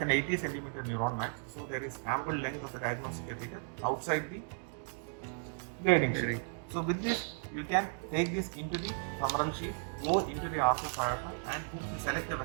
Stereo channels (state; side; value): silent; left; 54 dB below the other